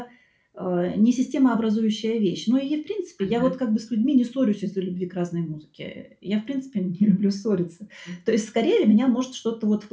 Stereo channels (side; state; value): both; identical; correlation 1.00